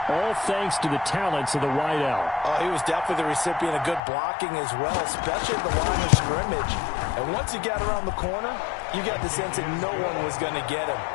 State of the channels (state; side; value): drops out; right; at 4.0 s